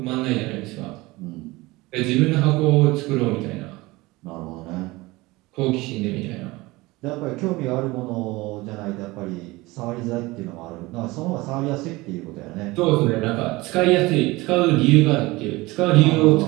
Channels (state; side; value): quieter; left; 21.4 dB